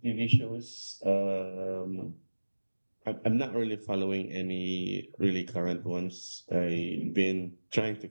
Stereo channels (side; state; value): both; inverted; correlation -1.00